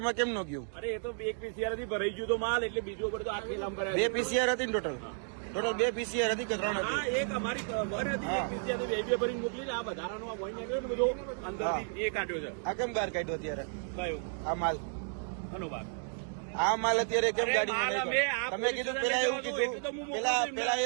માં કેમ ન ગયું? અરે એ તો એક પીસીઆર થી ભરાઈ ગયું તો માલ એટલે બીજો ઉપર તો આખી લાંબ કરાય. બે પીસીઆર હતી ને ટોટલ? ટોટલ બે પીસીઆર હતી કે ત્રણ હતી? એક અમારી વન હતી, એક પીસીઆર તો બે ભરીને મોકલી છે. આ વધારાનો આ વન નીકળ્યો ને બધો અંદરથી એ કાઢ્યો છે. આ કેમ બહાર કાઢ્યો અત્યારે કયો આ માલ? ઘણો ભાગ આ માલ અત્યારે કેમ ગાડીમાં માલ નહીં અમે કાઢ્યો? તમે કીધું પેલા એવું કીધું, પેલા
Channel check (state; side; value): silent; left; 56 dB below the other